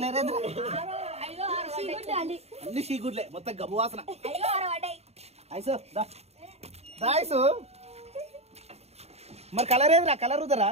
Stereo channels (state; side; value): late; left; 0.30 ms